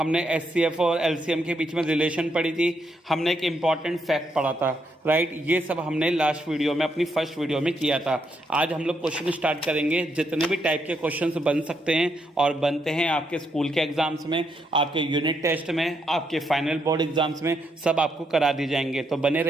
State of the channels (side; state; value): both; normal; correlation 0.78